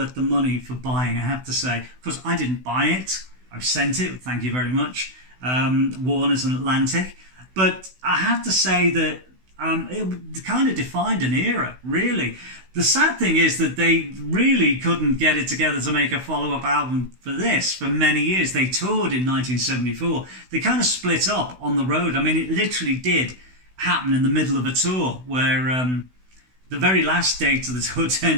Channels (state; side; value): late; left; 16 ms